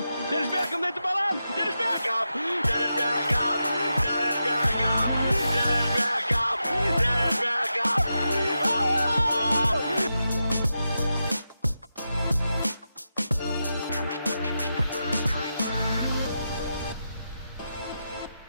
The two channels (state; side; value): inverted; both; correlation -0.88